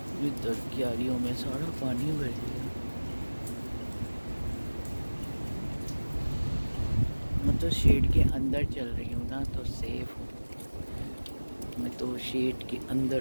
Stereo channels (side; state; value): both; inverted; correlation -1.00